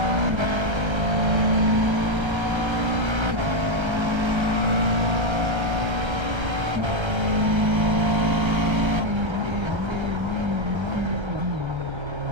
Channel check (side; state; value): left; late; 1.3 ms